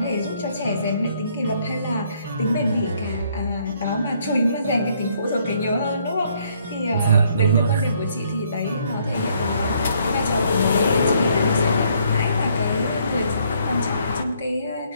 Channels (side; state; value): both; inverted; correlation -0.67